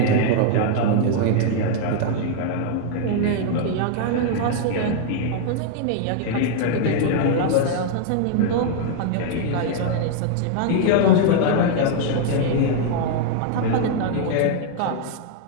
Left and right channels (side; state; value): both; different; correlation -0.01